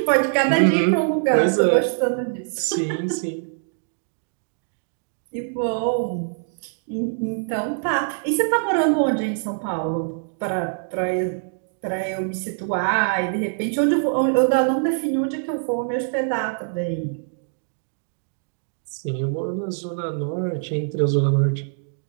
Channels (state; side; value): silent; left; digital silence